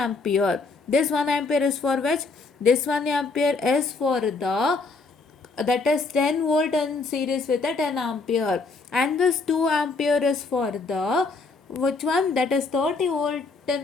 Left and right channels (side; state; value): right; quieter; 3.9 dB